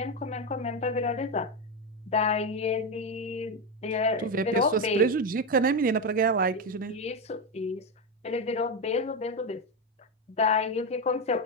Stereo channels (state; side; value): normal; both; correlation 0.11